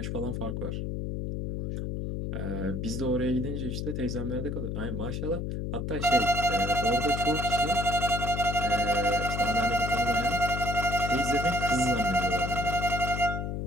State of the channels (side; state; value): left; noise; hum, 3 dB below the sound